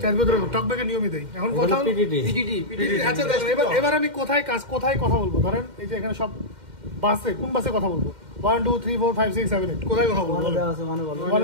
চার ভিতরে টকব্যাকের নিয়মই দেই। এখন কথা হলো পিটিটি। আচ্ছা দেখেন, এবার আমি কোথায় কথা বলবো, ধরেন এই যে এখানে সব বাসে, কোন বাসে কথা বলবো, 1 2 3 4 5 6 7 8 কোথায় কথা বলবো, দেওয়া আছে মানে বলো।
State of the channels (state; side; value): late; left; 2.1 ms